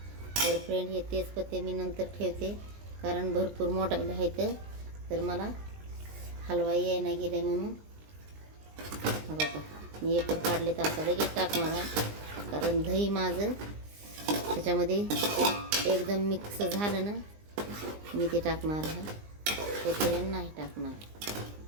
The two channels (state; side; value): late; left; 20 ms